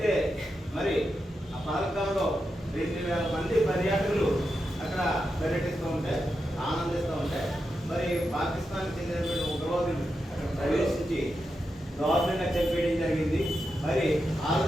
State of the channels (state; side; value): normal; both; correlation 0.87